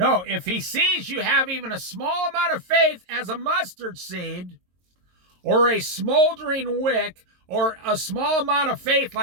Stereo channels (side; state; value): left; late; 22 ms